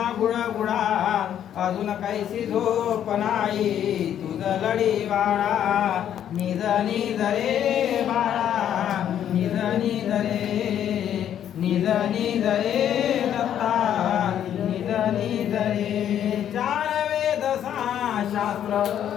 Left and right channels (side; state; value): right; quieter; 10.1 dB